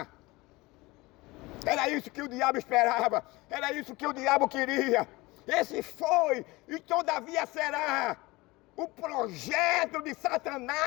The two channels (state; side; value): quieter; right; 21.9 dB